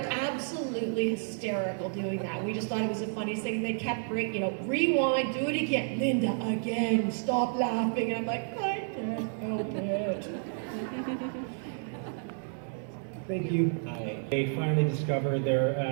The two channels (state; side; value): silent; left; 57 dB below the other